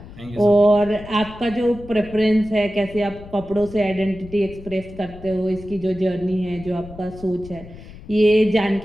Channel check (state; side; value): noise; left; rumble, 17 dB below the sound